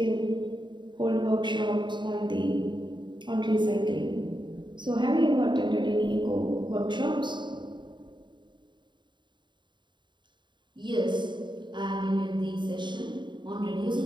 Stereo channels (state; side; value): late; left; 0.22 ms